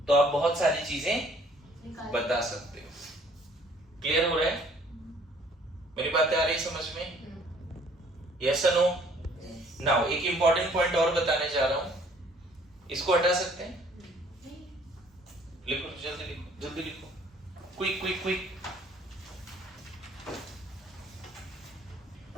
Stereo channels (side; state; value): both; normal; correlation 0.59